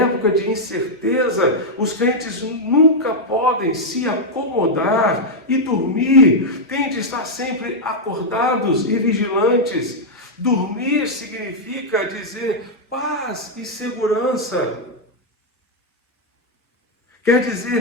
de incerteza, os crentes nunca podem se acomodar e dormir, têm de estar sempre acordados e vigilantes. Dormir significa dizer paz e segurança. Quer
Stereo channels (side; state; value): both; normal; correlation -0.03